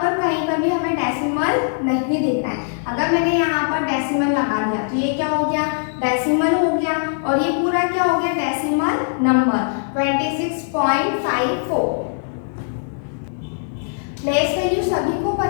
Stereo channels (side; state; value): right; silent; 62 dB below the other